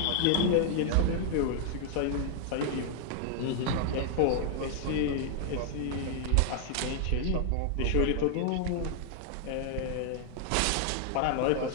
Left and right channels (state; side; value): different; both; correlation 0.00